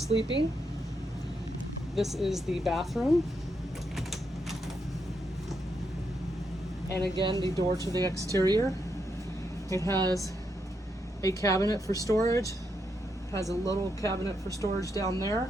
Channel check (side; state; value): both; normal; correlation 0.81